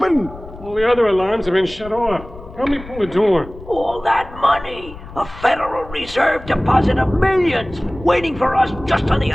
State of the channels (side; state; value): left; noise; rumble, 16 dB below the sound